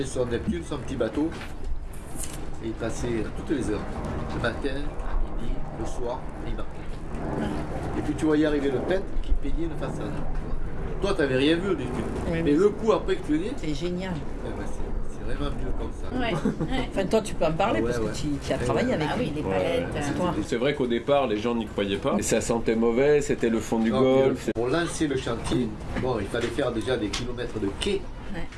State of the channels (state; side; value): identical; both; correlation 1.00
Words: son Neptune, son petit bateau, et il passait toutes les heures, le matin, à midi, le soir, et il marquait. Ouais. Et puis tu voyais arriver le peintre qui peignait une façade. Toi, tu n'avais rien vu au début, oui, mais le coup après que tu venais, c'est génial. C'est vraiment mieux comme ça. Ouais. Enfin, toi, tu peux en parler parce que tu as travaillé avec oui, les palettes. C'est vrai qu'au départ, les gens n'y croyaient pas. Et ça sentait mauvais, c'était le fond du golfe. Pour lancer le chantier, bon, il fallait faire déjà des kilomètres de quai. Ouais.